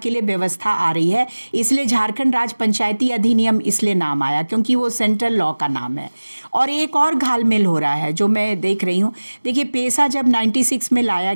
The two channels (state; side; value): inverted; both; correlation -1.00